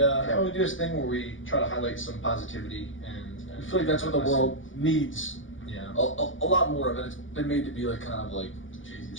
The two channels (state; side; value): late; right; 0.57 ms